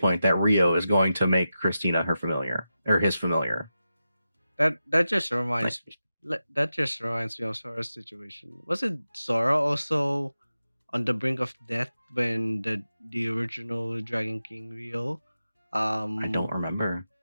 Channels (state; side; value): inverted; both; correlation -0.91